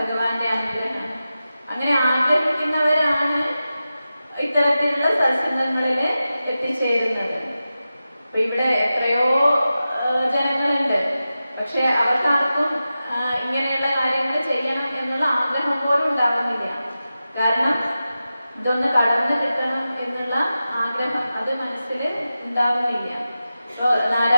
അനുഗ്രഹമാണ്. അങ്ങനെ ആഗ്രഹിക്കുന്നവരാണ് ഇത്തരത്തിലുള്ള സത്സംഗങ്ങളിൽ എത്തിച്ചേരുന്നത്. അപ്പൊ ഇവിടെ എത്രയോ ജനങ്ങളുണ്ട്, പക്ഷെ അവർക്കാർക്കും ഇങ്ങനെയുള്ള കാര്യങ്ങൾ ചെയ്യണം എന്നുള്ള ആഗ്രഹം പോലും ഉണ്ടാകുന്നില്ല. കാരണം ഇതൊന്ന് കടന്നു കിട്ടണം എന്നുള്ള ആഗ്രഹം അത് മനസ്സിൽ ഉണ്ടാകുന്നില്ല. ഇപ്പോ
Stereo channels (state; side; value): inverted; both; correlation -0.93